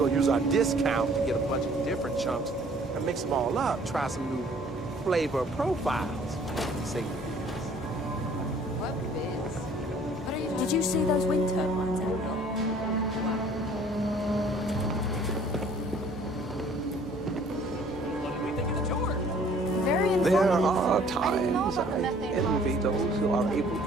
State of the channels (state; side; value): noise; left; hum, 19 dB below the sound